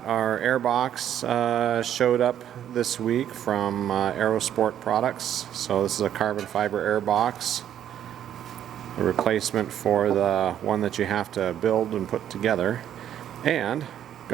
our air box showed up this week from Aerosport Products. So this is a carbon fiber air box, a replacement for the one that you have to build and put together. And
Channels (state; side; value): quieter; left; 10.4 dB